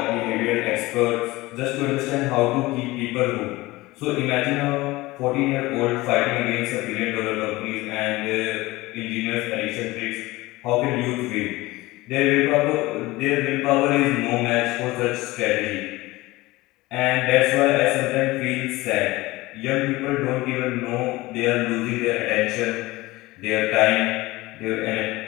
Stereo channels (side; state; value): right; quieter; 20.0 dB